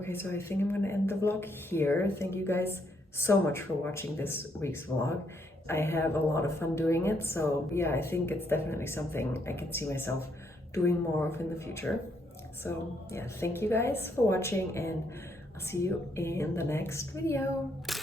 Okay, so I think I'm gonna end the vlog here. Thank you guys so much for watching this week's vlog. I have a lot of fun doing it, so yeah, I think it's definitely something I can see myself doing more of in the future. So yeah, thank you guys for watching, and I'll see you in the next video.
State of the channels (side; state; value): both; normal; correlation 0.73